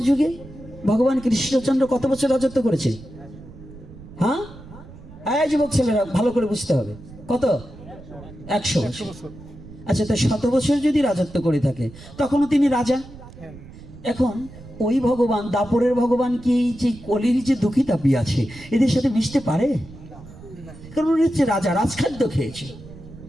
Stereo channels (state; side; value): noise; right; rumble, 17 dB below the sound